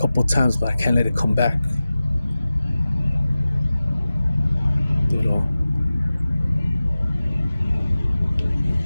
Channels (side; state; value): both; inverted; correlation -0.96